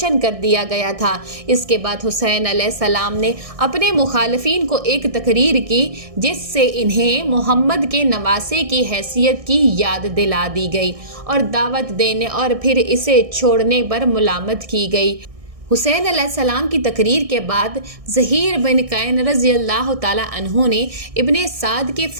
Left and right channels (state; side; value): late; left; 1.6 ms